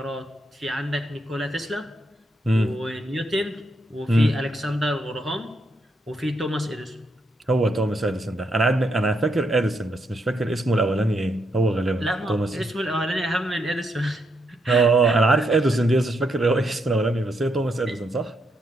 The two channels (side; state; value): both; normal; correlation 0.78